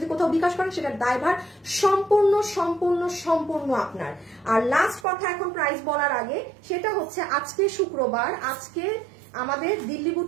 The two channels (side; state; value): left; drops out; at 5.1 s